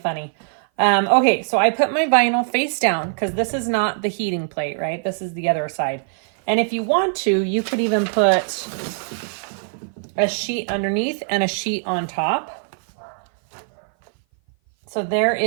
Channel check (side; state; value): left; silent; 57 dB below the other